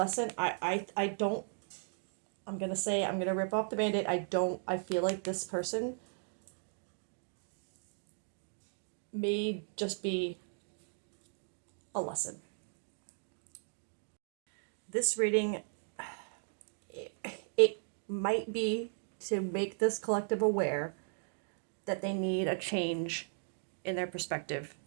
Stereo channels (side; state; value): left; silent; digital silence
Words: I don't, I'm going to say, I'm going to rip off the Band-Aid. I feel like this person may just be a lesson. This reading, it might be to make this collective aware that they need a change in their perspective